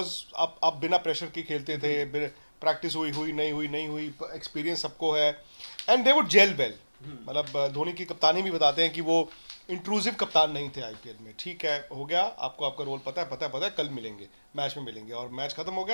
आप बिना प्रेशर के खेलते थे, प्रैक्टिस हुई नहीं हुई, एक्सपीरियंस सबको है, and they would gel well. मतलब धोनी की कप्तानी भी बताते हैं कि वो इंट्रूसिव कप्तान नहीं थे आईपीएल में। ठीक है, हो गया, आपको आपका रोल पता है, कल मिलेंगे, मैच में मिलेंगे, और मैच खत्म हो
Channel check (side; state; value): both; inverted; correlation -1.00